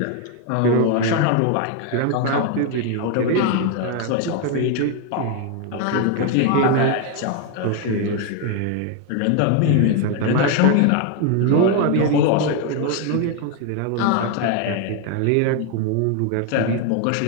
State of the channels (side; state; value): both; different; correlation 0.01